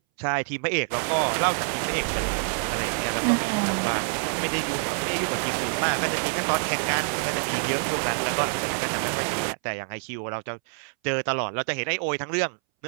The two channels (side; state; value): left; silent; 61 dB below the other